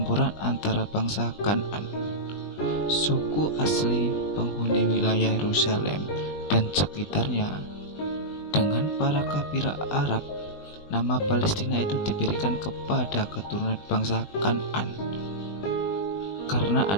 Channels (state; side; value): late; right; 20 ms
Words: antara bangsa Kan'an, suku asli penghuni wilayah Yerusalem dan sekitarnya. Dengan para kabilah Arab, nama Palestina itu diberikan kepada keturunan bangsa Kan'an karena